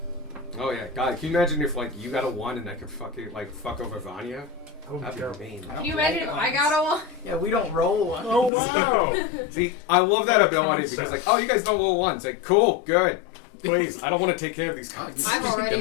Oh yeah, God, can you imagine if like you got a 1 and I could fucking like fuck over Vanya? That would be That'd terrible. be mean. Can you imagine if I got a one? Yeah, we don't roll one. Oh wow! See, I love that ability Concept. because like, oh, you guys don't roll 1s. Like, cool, good. Please, I don't want to take care of these cards. I've already.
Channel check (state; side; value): drops out; right; at 8.5 s